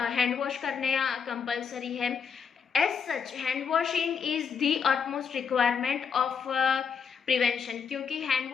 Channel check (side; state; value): right; quieter; 6.5 dB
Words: वॉश करने कंपलसरी है। As such hand washing is the utmost requirement of prevention, क्योंकि हैंड